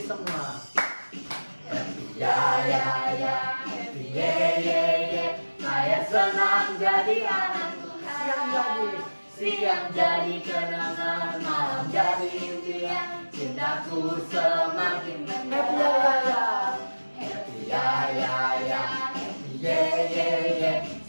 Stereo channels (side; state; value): both; inverted; correlation -1.00